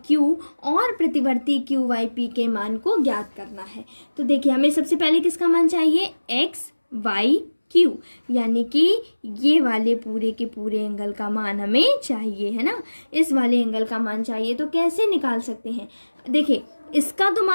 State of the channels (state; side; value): inverted; both; correlation -1.00